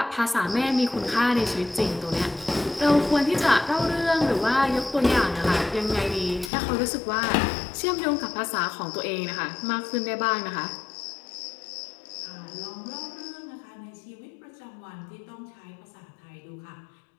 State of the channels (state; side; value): drops out; right; at 6.5 s